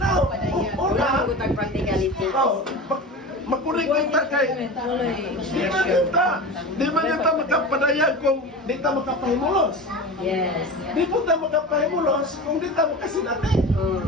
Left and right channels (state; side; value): normal; both; correlation 0.30